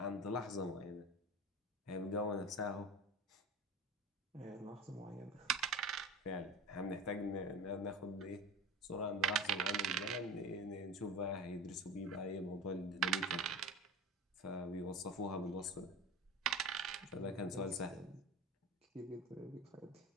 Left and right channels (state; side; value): normal; both; correlation 0.32